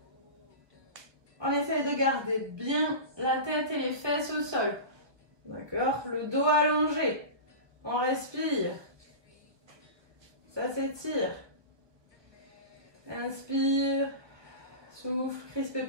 On essaie de garder bien la tête et les fesses au sol. D'accord? Le dos allongé. On respire. Ça s'étire. Inspire. Souffle. Crispez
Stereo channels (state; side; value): late; left; 1.2 ms